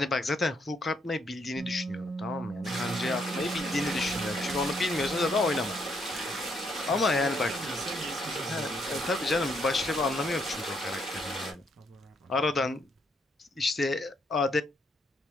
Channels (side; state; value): both; normal; correlation 0.73